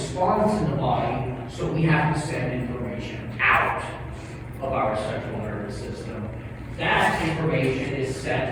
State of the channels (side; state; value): both; identical; correlation 1.00